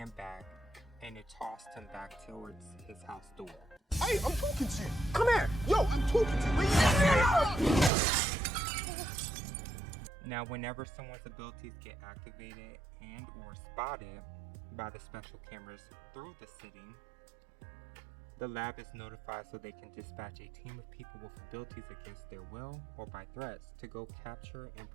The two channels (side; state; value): left; drops out; at 7.9 s